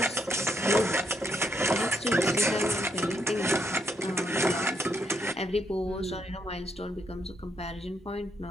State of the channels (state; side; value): normal; both; correlation 0.76